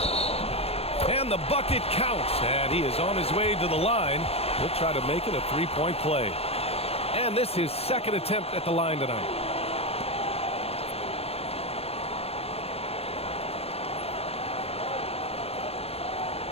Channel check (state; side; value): late; right; 0.29 ms